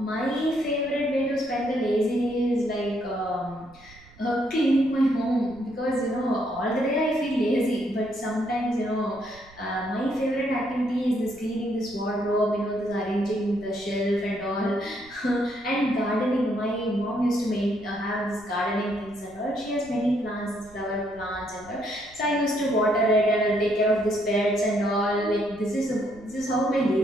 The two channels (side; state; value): right; noise; rumble, 24 dB below the sound